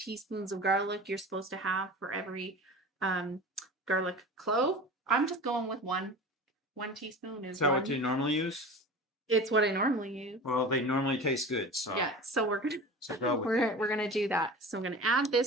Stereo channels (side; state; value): both; normal; correlation 0.35